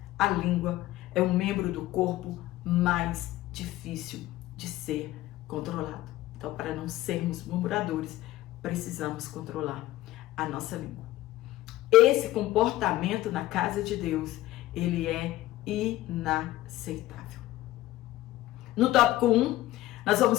a língua é um membro do corpo mais difícil de ser controlado. Então, para não sermos murmuradores, precisamos controlar a nossa língua. Esse comportamento na casa de Deus, ele é inaceitável. No tópico 1, nós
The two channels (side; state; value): right; quieter; 15.8 dB